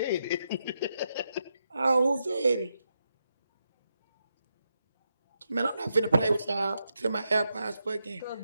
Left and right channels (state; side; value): inverted; both; correlation -0.84